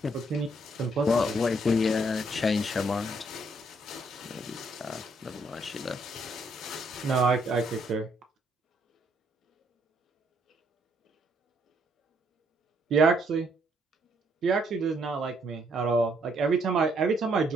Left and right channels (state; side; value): normal; both; correlation 0.71